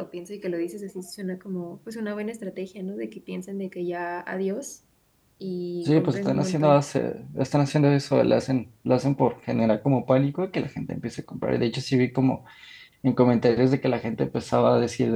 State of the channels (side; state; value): both; identical; correlation 1.00